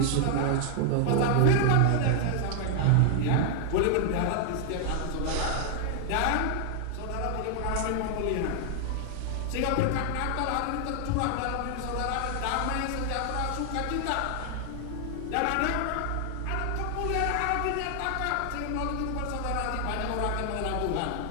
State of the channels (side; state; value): both; different; correlation 0.00